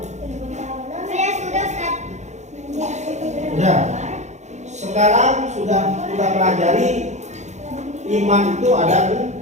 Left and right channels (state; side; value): late; left; 0.33 ms